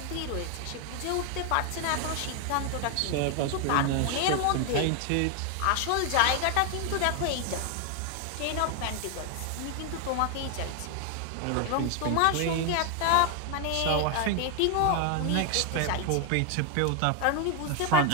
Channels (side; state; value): both; different; correlation 0.01